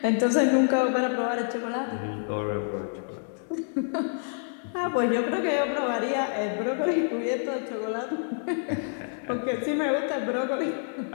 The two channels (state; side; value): silent; right; digital silence